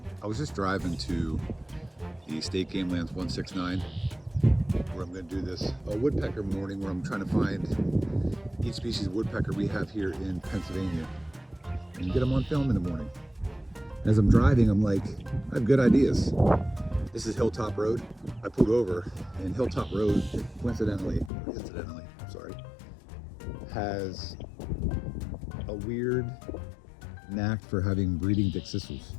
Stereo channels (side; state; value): right; drops out; at 21.3 s